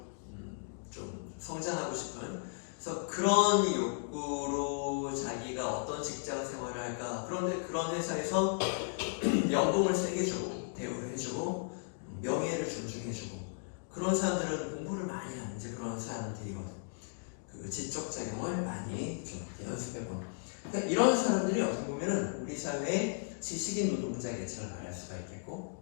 좀 성장하고 싶은. 그래서 그런 욕구로 자기가 어떤 직장 생활을 할까. 그런데 그런 회사에서 연봉을 세게 주고 대우를 해주고 명예를 존중해주고 그런 사람들은 공부를 많이 하는 이제 그런 사람들이거든. 그 지적작용을 많이 좀 연습해보는. 그러니까 이런 사람들이 어떻게 보면은 우리 사회의 지식인 노동자 계층을 말할 수가 있겠고.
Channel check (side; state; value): right; silent; digital silence